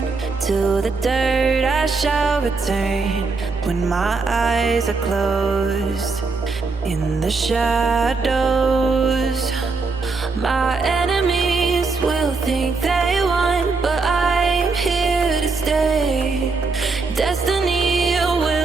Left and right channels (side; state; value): left; quieter; 4.1 dB